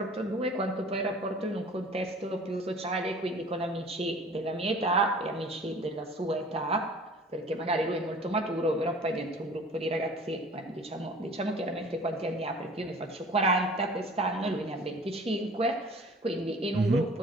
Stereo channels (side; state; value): both; normal; correlation 0.47